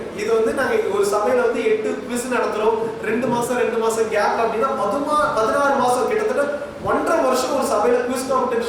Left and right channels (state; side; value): identical; both; correlation 1.00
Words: இது வந்து நாங்க ஒரு சபையில வந்து 8 குவிஸ் நடத்துறோம். 2 மாசம் கேப் அப்படின்னா 16 மாசம், கிட்டத்தட்ட 1.5 வருஷம் ஒரு சபையில குவிஸ்